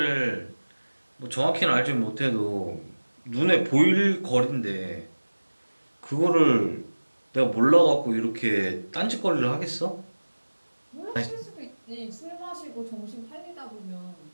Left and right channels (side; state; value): both; inverted; correlation -1.00